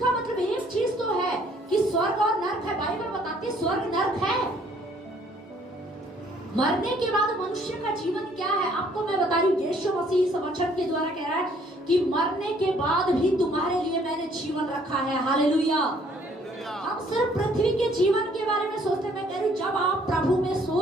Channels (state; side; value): normal; both; correlation 0.62